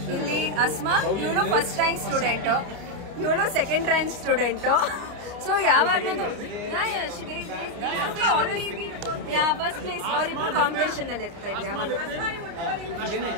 ಇಲ್ಲಿ ಅಸ್ಮಾ, ಇವಳು ಫಸ್ಟ್ ರ್ಯಾಂಕ್ ಸ್ಟೂಡೆಂಟ್, ಇವಳು ಸೆಕೆಂಡ್ ರ್ಯಾಂಕ್ ಸ್ಟೂಡೆಂಟ್. ಸೊ ಯಾವಾಗ್ಲೂ ಫಸ್ಟ್ ಪ್ಲೇಸ್ ಅವರಿಬ್ರು ಕಾಂಪಿಟೇಷನ್ ಅಲ್ಲಿ ಇರ್ತಾ ಇದ್ರು ಯಾವಾಗ.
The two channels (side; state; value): left; late; 29 ms